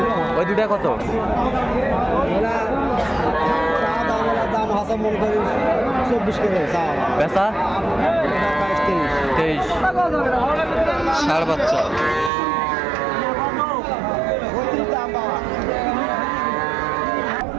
ওই দুটা কত? বেচা 23। ষাঁড় বাচ্চা।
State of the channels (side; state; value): left; drops out; at 12.3 s